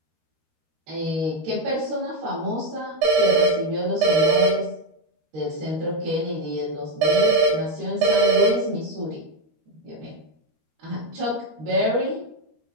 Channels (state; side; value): late; left; 13 ms